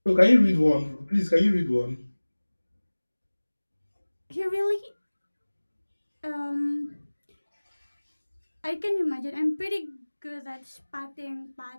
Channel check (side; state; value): both; inverted; correlation -1.00